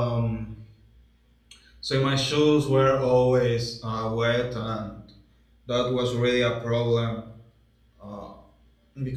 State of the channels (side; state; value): both; identical; correlation 1.00